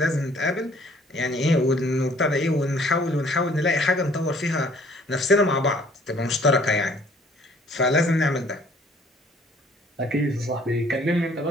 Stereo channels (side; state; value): both; normal; correlation 0.58